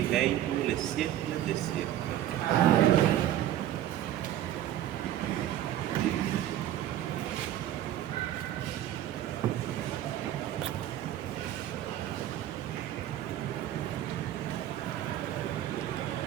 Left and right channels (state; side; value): quieter; left; 12.3 dB